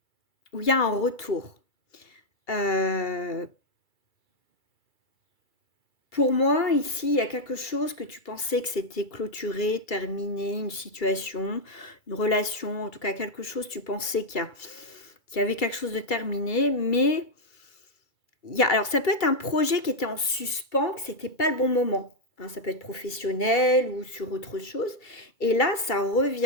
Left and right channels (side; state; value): right; late; 2.3 ms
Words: où il y a un retour. Pour moi, ici, il y a quelque chose que tu pensais que c'était clôturé, terminé, une situation, une relation, en tout cas quelque chose, tu pensais qu'il y avait quelque chose de terminé, mais alors ça peut être un projet qui était en suspens, que c'était pas le bon moment. Hein, ça peut être professionnel ou sur autre chose. Et là, ça